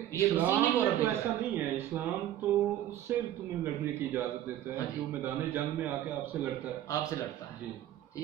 مسیحی مورخ تو ایسا نہیں ہے، اسلام تو اس سے تمہیں لڑنے کی اجازت دیتا ہے جو میدان جنگ میں آ کے آپ سے لڑتا ہے، آپ سے لڑتا ہے،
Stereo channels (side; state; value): left; quieter; 12.4 dB